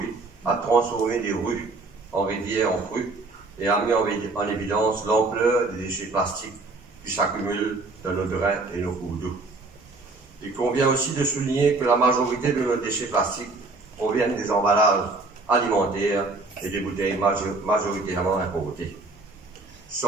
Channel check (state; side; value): quieter; left; 3.5 dB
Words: a transformé des rues en rivières en crues et a mis en évidence l'ampleur des déchets plastiques qui s'accumulent dans nos drains et nos cours d'eau. Il convient aussi de souligner que la majorité de nos déchets plastiques proviennent des emballages alimentaires et des bouteilles majoritairement importées.